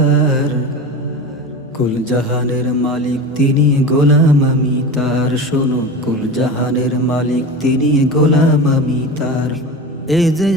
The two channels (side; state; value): both; normal; correlation 0.28